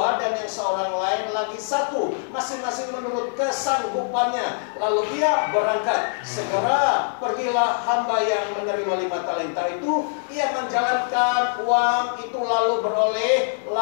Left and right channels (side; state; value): right; silent; 63 dB below the other